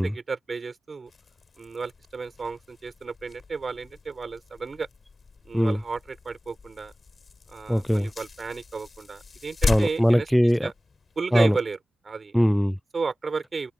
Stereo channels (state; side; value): normal; both; correlation 0.97